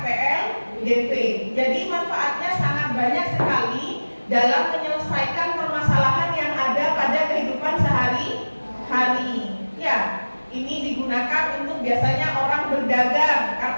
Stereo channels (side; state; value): both; inverted; correlation -1.00